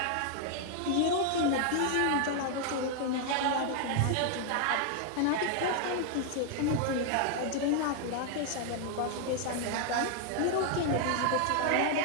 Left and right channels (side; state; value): both; different; correlation 0.00